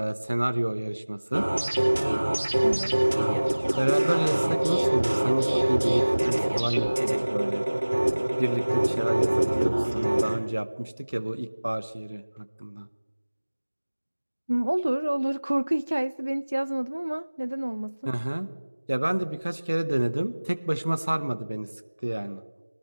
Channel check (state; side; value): inverted; both; correlation -1.00